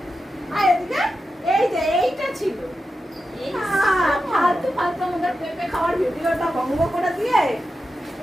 আয় এদিকে, এই যে এইটা ছিল। ফালতু ফালতু আমাদের পেঁপে খাওয়ার ভিডিওটা বন্ধ করে দিয়ে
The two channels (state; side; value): normal; both; correlation 0.90